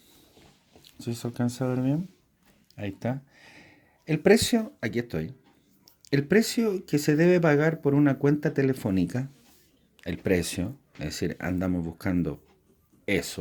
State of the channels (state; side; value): identical; both; correlation 1.00